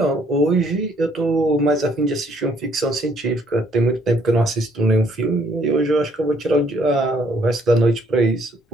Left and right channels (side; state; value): both; normal; correlation 0.65